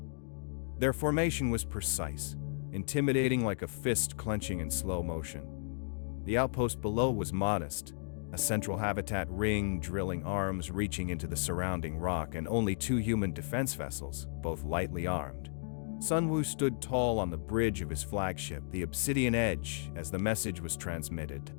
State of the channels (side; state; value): right; silent; digital silence